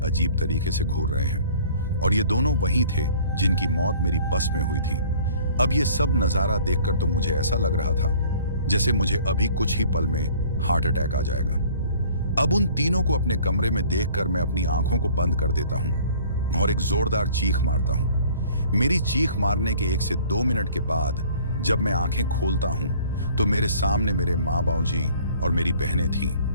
अजीब तरीके से घूर रहे हैं, और ये दोनों वही थे जिनकी मौत मेरी बस में हुई थी। अब ये सब नजारा देखकर तो मुझे ऐसा लग रहा था जैसे मुझे अभी कुछ ही पल में हार्ट अटैक आ जाएगा। अब उन तीनों को अपने कमरे में देखकर मैं अपनी आंखों को बंद कर देता हूं और एक जोरदार चीख मारता हूं। मेरी चीख मारने के 1 से 2 मिनट के बाद जब मैं आंखें खोलता हूं तो मेरे सामने मेरे माँ बाबूजी और मेरी बहनें थीं।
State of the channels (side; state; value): both; inverted; correlation -0.52